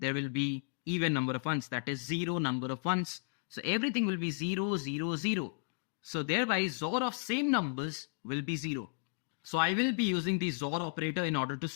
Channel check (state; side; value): silent; right; digital silence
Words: will be even number of ones, that is 0 number of ones. So everything will be 0, 0, 0. So thereby XOR of same numbers will be 0. So I will be using the XOR operator in order to